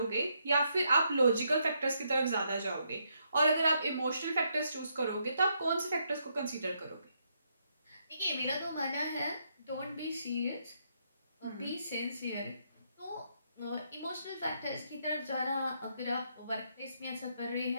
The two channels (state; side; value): inverted; both; correlation -0.76